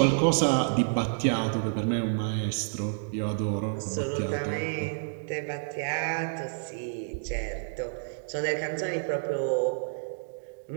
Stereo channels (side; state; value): left; silent; digital silence